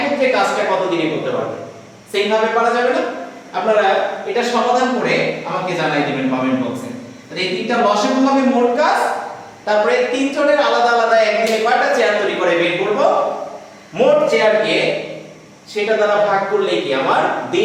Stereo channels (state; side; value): identical; both; correlation 1.00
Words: কাজটা কত দিনে করতে পারবে? সেইভাবে পারা যাবে না? আপনারা এটা সমাধান করে আমাকে জানাই দিবেন কমেন্ট বক্সে। তাহলে এই তিনটা লসাগু হবে মোট কাজ, তারপরে তিনজনের আলাদা আলাদা একদিনে কয়টা চেয়ার তৈরি করে বের করব, মোট চেয়ারকে সেটা দ্বারা ভাগ করলে কি আমার